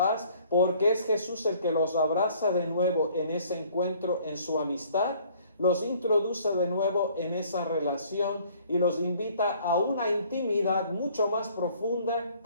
porque es Jesús el que los abraza de nuevo en ese encuentro, en su amistad, los introduce de nuevo en esa relación y los invita a una intimidad mucho más profunda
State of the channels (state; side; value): inverted; both; correlation -0.57